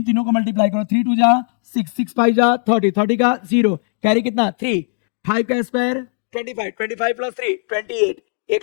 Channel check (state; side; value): silent; right; digital silence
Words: तीनों को मल्टीप्लाई करो, 3 2 जा 6 6 5 जा 30 30 का 0 कैरी कितना 3, 5 का स्क्वायर 25 25 प्लस 3 28,